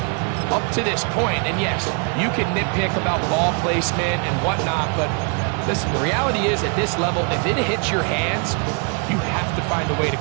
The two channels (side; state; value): left; quieter; 37.3 dB